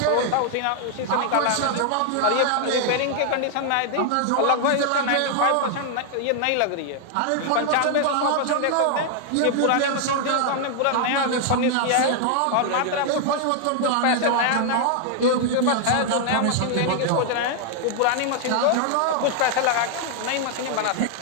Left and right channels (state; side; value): different; both; correlation 0.00